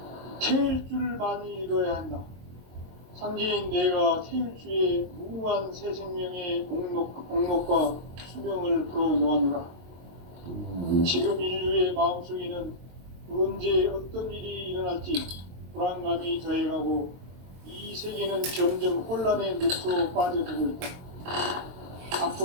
태일 줄을 많이 읽어야 한다. 상제인 내가 태일주의 무궁한 새 생명의 목록과 수명을 불어놓아노라. 지금 인류의 마음속에는 언제 어떤 일이 일어날지 불안감이 더해가고 이 세계는 점점 혼란의 늪으로 빠져들고 있다.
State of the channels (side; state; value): left; late; 23 ms